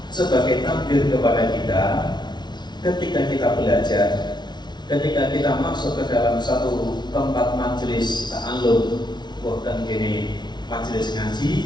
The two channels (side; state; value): right; late; 0.20 ms